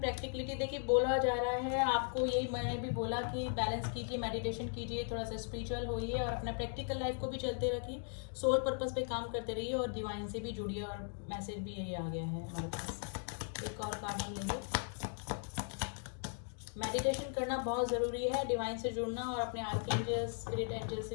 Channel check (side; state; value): right; silent; 53 dB below the other